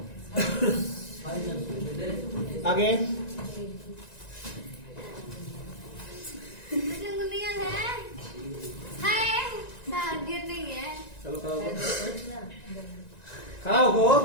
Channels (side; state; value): right; late; 1.9 ms